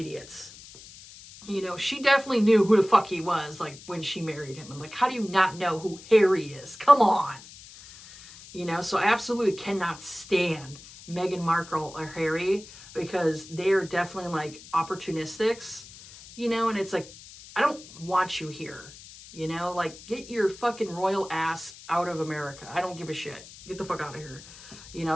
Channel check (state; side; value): noise; left; hiss, 18 dB below the sound